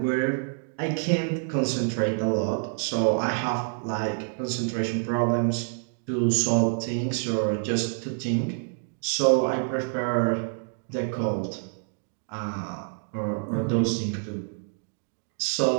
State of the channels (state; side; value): silent; left; 58 dB below the other